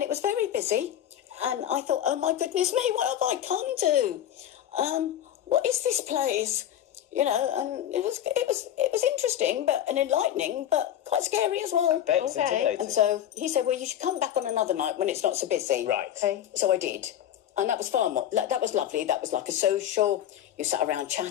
it was very busy. And I thought, oh my goodness me, what have I come to? What is this place? You know, and it was interesting, and enlightening, but quite scary as well. I bet it's intimidating. And so he said, well, you should come back on another night when it's not so busy. Right. Okay. So I did. And that was far more, that was lovely. That was like a social. You sat around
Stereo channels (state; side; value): quieter; right; 11.0 dB